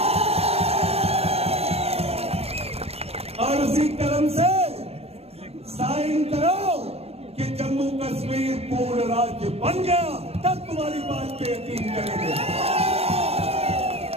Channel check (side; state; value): left; late; 0.29 ms